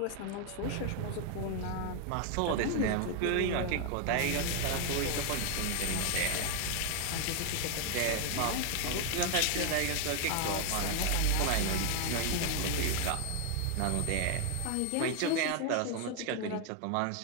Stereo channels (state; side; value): different; both; correlation 0.00